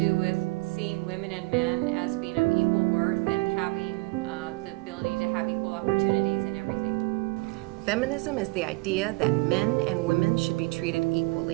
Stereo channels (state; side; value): quieter; left; 25.1 dB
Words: with seeing women and men as being of equal worth and having the ability to have equal opportunities in everything. Feminism is the idea that men and women should be treated